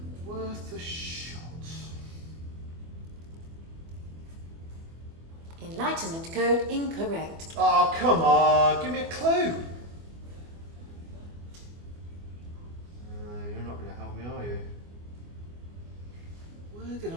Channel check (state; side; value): late; left; 24 ms